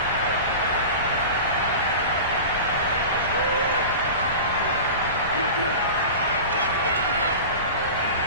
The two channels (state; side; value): inverted; both; correlation -0.32